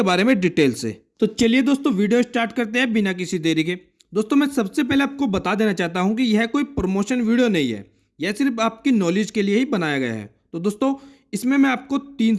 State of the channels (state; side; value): identical; both; correlation 1.00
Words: बारे में डिटेल से। तो चलिए दोस्तों वीडियो स्टार्ट करते हैं बिना किसी देरी के। दोस्तों मैं सबसे पहले आपको बता देना चाहता हूं कि यह कोई प्रमोशन वीडियो नहीं है, यह सिर्फ आपकी नॉलेज के लिए ही बनाया गया है। तो दोस्तों इसमें मैं आपको 3